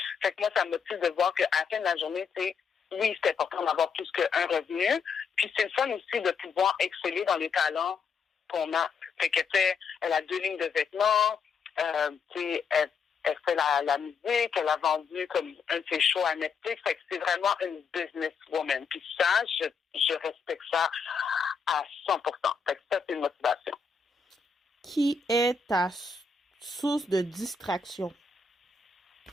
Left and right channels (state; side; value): quieter; right; 5.5 dB